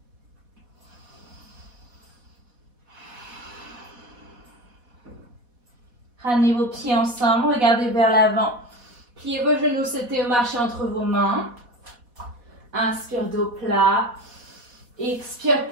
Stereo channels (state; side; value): late; left; 4.1 ms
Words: Ramenez vos pieds ensemble, regardez vers l'avant. Pliez vos genoux, c'était au marché entre vos mains. Inspire, dos plat. Expire,